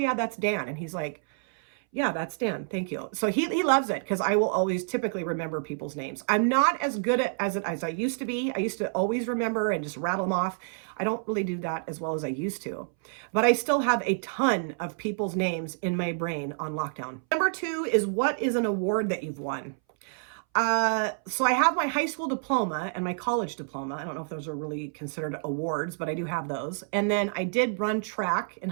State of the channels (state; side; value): silent; left; 59 dB below the other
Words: that's Dan. And he's like, yeah, that's Dan. Thank you. So he loves it because I will always typically remember people's names. I'm not as good at as I used to be. I used to always remember and just rattle them off. I don't really do that as well as I used to, but I still have a ton of people's names in my brain on lockdown. Number 2 is, what is an award that you've won? So I have my high school diploma and my college diploma. I don't know if those are really considered awards, but I do have those. And then I did run track in